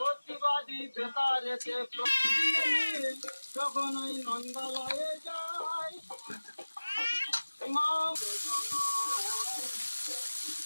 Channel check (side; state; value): both; inverted; correlation -1.00